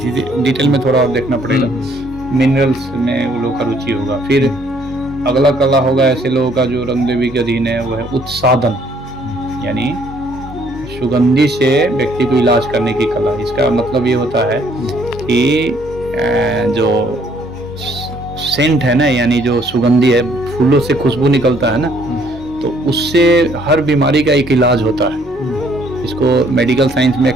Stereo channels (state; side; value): normal; both; correlation 0.64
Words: डिटेल में थोड़ा और देखना पड़ेगा। मिनरल्स में वो लोग का रुचि होगा। फिर अगला कला होगा ऐसे लोगों का जो रंग देवी के अधीन है, वो है उत्सादन, यानी सुगंधी से व्यक्ति को इलाज करने की कला। इसका मतलब ये होता है कि जो सेंट है ना, यानी जो सुगंधी है, फूलों से खुशबू निकलता है ना, तो उससे हर बीमारी का एक इलाज होता है। इसको मेडिकल साइंस में